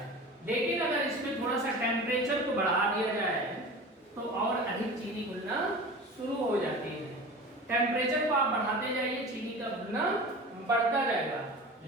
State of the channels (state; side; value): normal; both; correlation 0.35